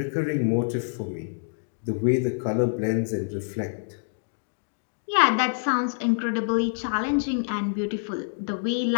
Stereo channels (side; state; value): right; silent; digital silence